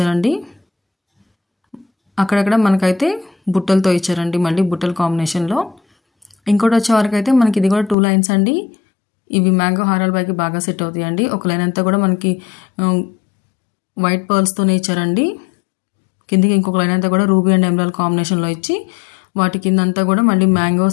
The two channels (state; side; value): drops out; right; at 8.0 s